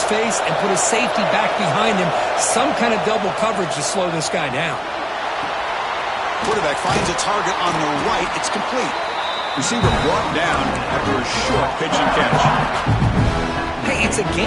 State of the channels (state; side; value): identical; both; correlation 1.00